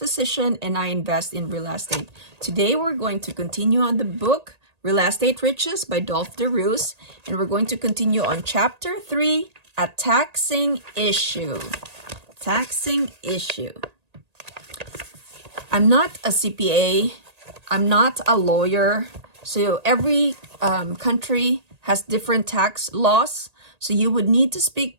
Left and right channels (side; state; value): left; late; 1.8 ms